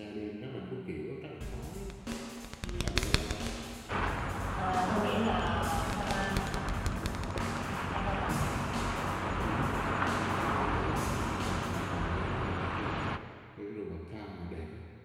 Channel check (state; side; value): identical; both; correlation 1.00